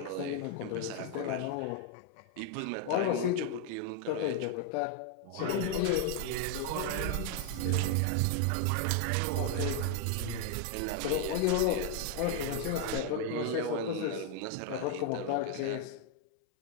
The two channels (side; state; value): both; different; correlation 0.01